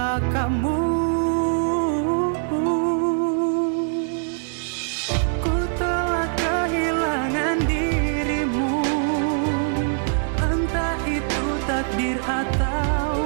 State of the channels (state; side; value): silent; left; digital silence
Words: kamu. Ku telah kehilangan dirimu, entah itu takdir